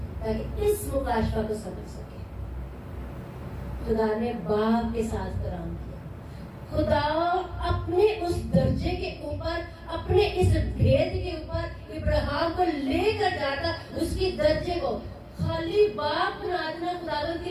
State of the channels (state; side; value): identical; both; correlation 1.00